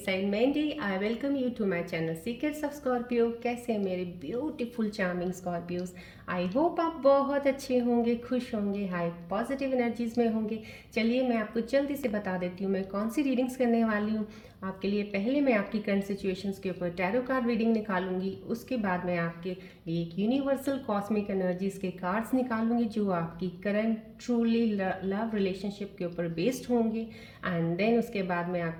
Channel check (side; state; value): both; identical; correlation 1.00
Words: side Mandy I welcome you to my channel secrets of Scorpio. कैसे हैं मेरे beautiful charming Scorpios. I hope आप बहुत अच्छे होंगे, खुश होंगे, हाई पॉजिटिव एनर्जीज में होंगे। चलिए मैं आपको जल्दी से बता देती हूँ मैं कौन सी रीडिंग्स करने वाली हूँ आपके लिए। पहले मैं आपकी करंट सिचुएशंस के ऊपर टैरो कार्ड रीडिंग निकालूंगी। उसके बाद मैं आपके लिए एक यूनिवर्सल कॉस्मिक एनर्जीज के कार्ड्स निकालूंगी जो आपकी करंट ट्रूली लव रिलेशनशिप के ऊपर बेस्ड होंगे। एंड देन उसके बाद मैं